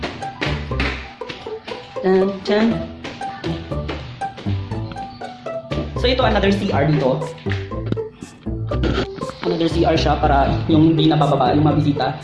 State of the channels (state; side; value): identical; both; correlation 1.00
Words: Dun, dun. So ito another CR dito. Another CR siya para yung hindi nabababa yung mga bisita.